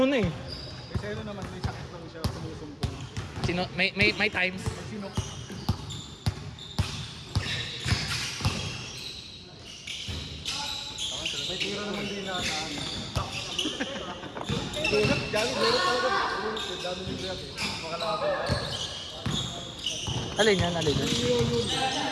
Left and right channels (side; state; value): both; identical; correlation 1.00